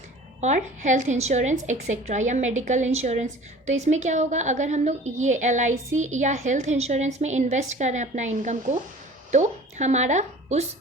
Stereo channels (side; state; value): both; normal; correlation 0.44